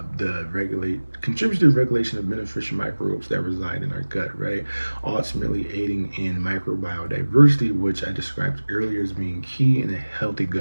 the regulation of beneficial microbes that reside in our gut, right? Ultimately aiding in microbial diversity, which I described earlier as being key in a healthy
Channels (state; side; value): inverted; both; correlation -1.00